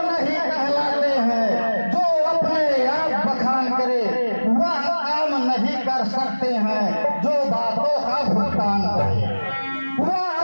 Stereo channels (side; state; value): both; inverted; correlation -1.00